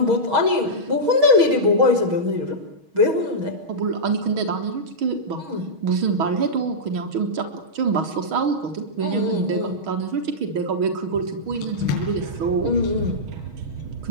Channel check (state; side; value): late; left; 6.3 ms